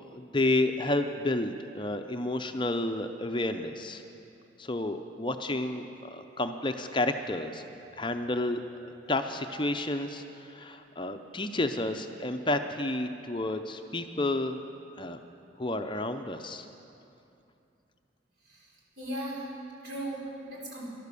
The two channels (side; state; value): both; normal; correlation 0.49